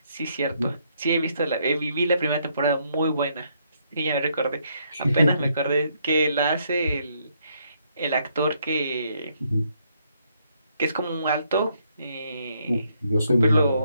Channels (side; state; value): both; inverted; correlation -0.73